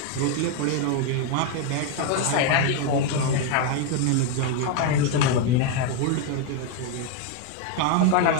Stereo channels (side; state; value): both; different; correlation 0.01